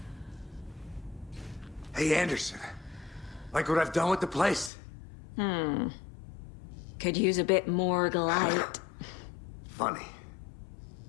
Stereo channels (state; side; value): drops out; right; at 4.7 s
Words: Hey, Anderson. Like what I've done with the place? Could use a bit more light. Funny.